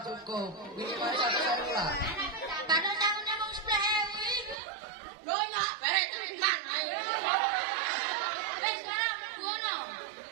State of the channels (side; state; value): left; drops out; at 4.5 s